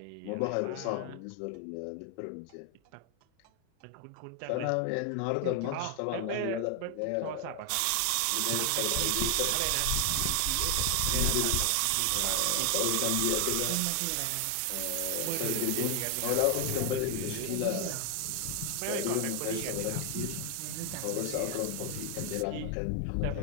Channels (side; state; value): both; different; correlation 0.00